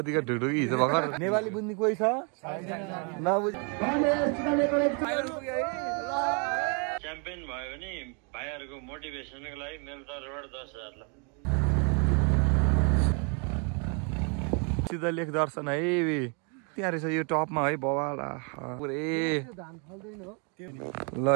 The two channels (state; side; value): quieter; left; 36.4 dB